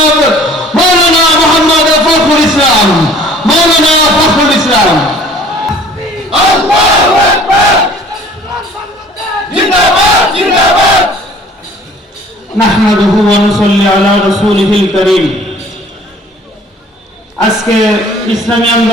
মৌলানা মোহাম্মদ ফখরুল ইসলাম। মৌলানা ফখরুল ইসলাম। নাহমাদুহু ওয়া নুসাল্লি আলা রাসূলিহিল কারীম। আজকে ইসলামী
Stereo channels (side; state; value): both; normal; correlation 0.52